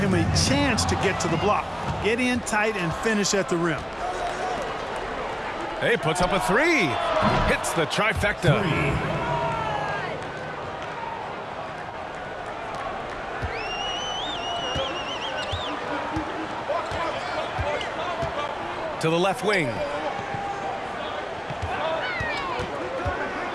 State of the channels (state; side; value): identical; both; correlation 1.00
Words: a chance to get to the block. Get in tight and finish at the rim. Hey, puts up a 3. Hits the trifecta. To the left wing.